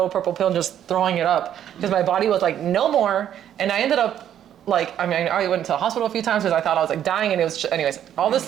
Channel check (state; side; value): quieter; left; 10.3 dB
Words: purple pill and just throwing it up because my body was like, no more. And I ended up I went to the hospital a few times because I thought I was like dying, and it was anyways, all this